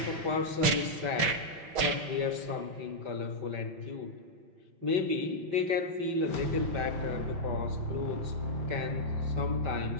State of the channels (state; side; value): late; left; 6.4 ms